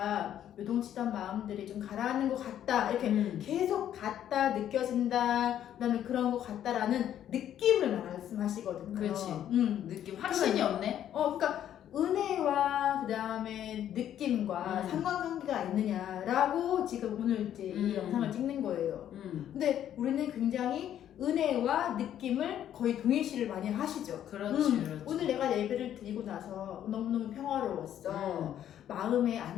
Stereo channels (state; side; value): quieter; right; 10.7 dB